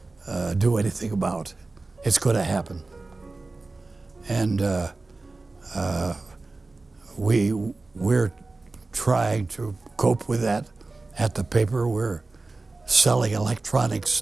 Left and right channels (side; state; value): left; quieter; 3.4 dB